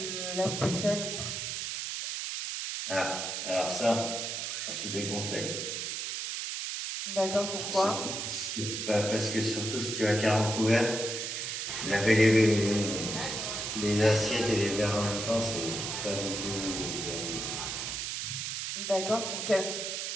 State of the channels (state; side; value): noise; right; hiss, 3 dB below the sound